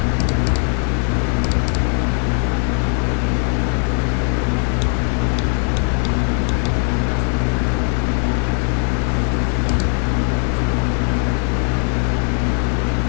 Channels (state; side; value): quieter; right; 37.6 dB